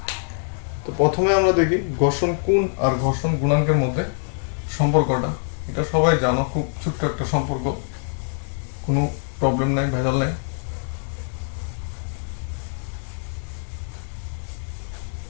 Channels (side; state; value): right; silent; 63 dB below the other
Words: তো প্রথমে আমরা দেখি ঘর্ষণ কোণ আর ঘর্ষণ গুণাঙ্কের মধ্যে সম্পর্কটা। এটা সবাই জানো, খুব ছোট্ট একটা সম্পর্ক, কোনো প্রবলেম নাই, ভেজাল নাই।